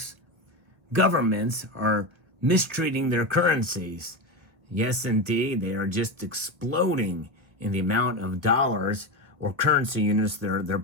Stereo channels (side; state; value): left; late; 1.3 ms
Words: Governments are mistreating their currencies. Yes, indeed, they are just exploding in the amount of dollars or currency units they're